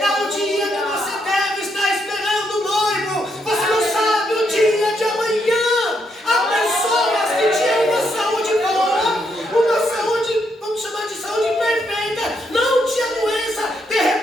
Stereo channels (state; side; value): normal; both; correlation 0.77